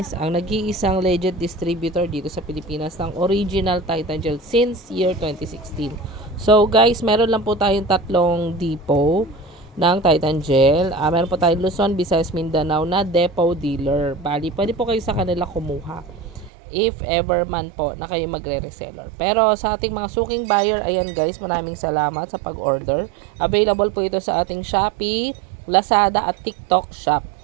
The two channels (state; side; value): drops out; left; at 16.5 s